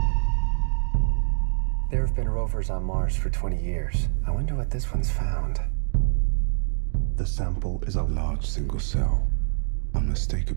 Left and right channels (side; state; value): left; silent; 60 dB below the other